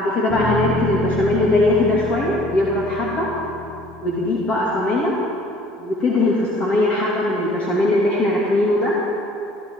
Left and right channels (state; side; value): normal; both; correlation 0.54